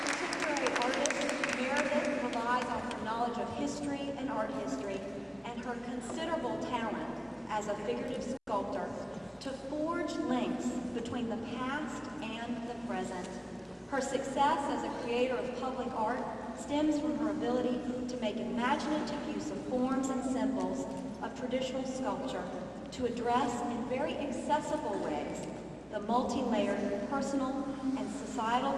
history and art history, and her considerable talent as a figurative sculptor to forge links between the past and the present. Her success as a creator of public art stems from her ability to make imaginative use of forms and symbols of traditional sculpture to address in very accessible ways the multi-layered personal and societal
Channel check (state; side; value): identical; both; correlation 1.00